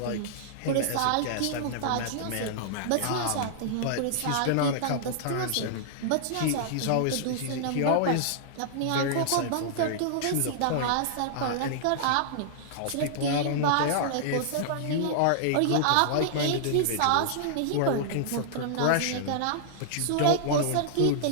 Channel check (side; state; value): both; different; correlation -0.01